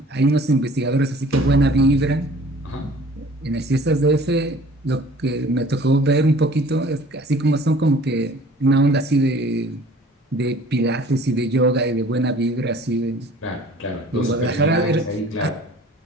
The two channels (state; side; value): normal; both; correlation 0.49